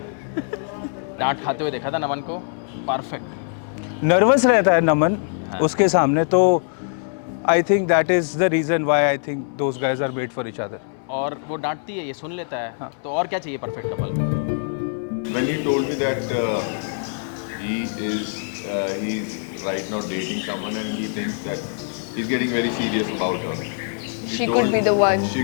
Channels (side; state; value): right; silent; 62 dB below the other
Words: डांट खाते हुए देखा था नमन को, परफेक्ट। नर्वस रहता है नमन उसके सामने, तो I think that is the reason why I think those guys are made for each other. और वो डांटती है, ये सुन लेता है, तो और क्या चाहिए परफेक्ट कपल में? When he told me that he's right now dating someone and he thinks that he's getting very serious about her. She could be the one. She